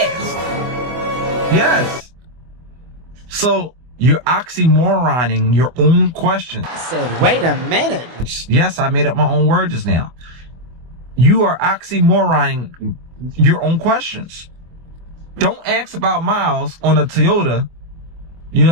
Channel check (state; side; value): late; left; 24 ms